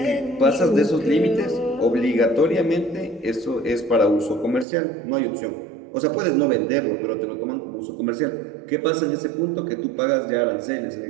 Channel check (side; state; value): left; drops out; at 4.7 s